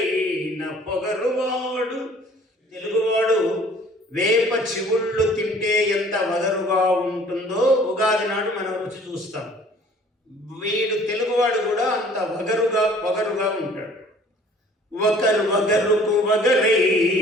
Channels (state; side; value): normal; both; correlation 0.53